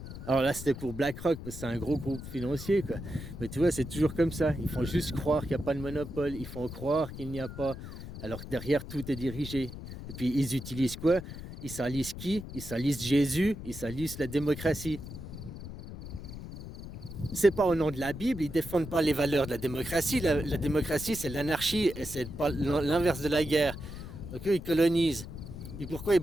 Alors là, c'était pour BlackRock, parce que c'est un gros groupe financier, quoi. Mais tu vois, c'est toujours comme ça. Ils font juste croire qu'il n'y a pas de monopole. Ils font croire qu'il n'y a pas... Alors que derrière, tout est dirigé. Et puis, ils utilisent quoi? Ils salissent qui? Ils salissent Jésus. Ils salissent la démocratie. C'est pas au nom de la Bible. Ils défendent pas les valeurs de la démocratie. La démocratie, c'est l'anarchie. Et c'est pas l'inverse de la guerre. Donc eux, ils colonisent. Et pourquoi ils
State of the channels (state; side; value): noise; left; rumble, 11 dB below the sound